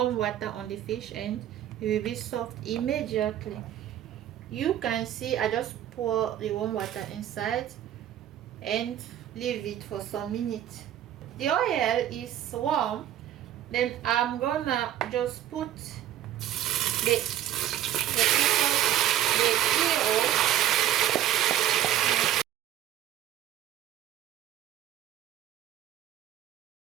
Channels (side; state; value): left; quieter; 11.8 dB